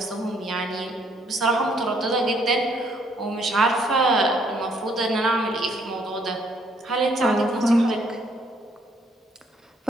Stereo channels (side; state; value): both; normal; correlation 0.67